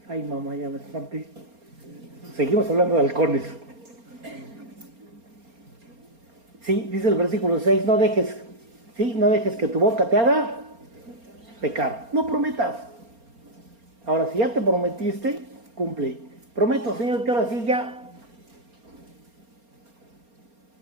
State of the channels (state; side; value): late; left; 4.3 ms